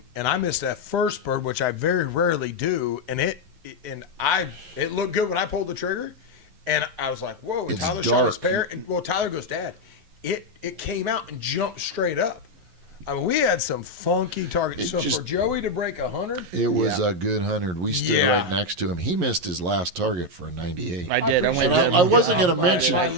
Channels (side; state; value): left; late; 11 ms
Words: and I missed that first bird, which I very rarely do, and it looked good when I pulled the trigger, and I was like, "Whoa!" And It's Tyler dark. shot his pair, and Tyler goes, "Dad, it came out and jumped straight up." I mean, we had some funky targets. For Joey to break 100, it was a good 100. We stood right next to him. He missed his last target for a 98. I did. I wasn't going to mention